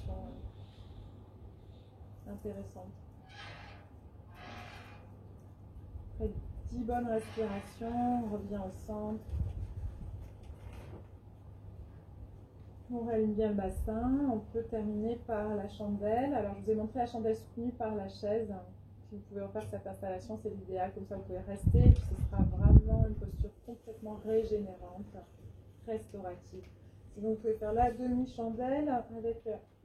intéressantes. Après 10 bonnes respirations, on revient au centre. On réaligne bien le bassin. On peut terminer par la chandelle. Alors, je vous ai montré la chandelle soutenue par la chaise. Si vous pouvez refaire cette installation, c'est l'idéal. Comme ça, vous pouvez rester. Ce sera vraiment une posture complètement régénérante, restaurative. Donc vous pouvez faire la demi-chandelle avec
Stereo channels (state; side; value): identical; both; correlation 1.00